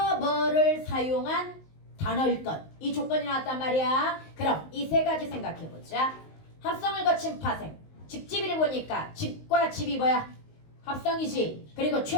사용한 단어일 것. 이 조건이 나왔단 말이야. 그럼 이 세 가지 생각해 보자. 합성을 거친 파생. 집집이를 보니까 집과 집이 뭐야? 합성이지. 그리고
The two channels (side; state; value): right; late; 19 ms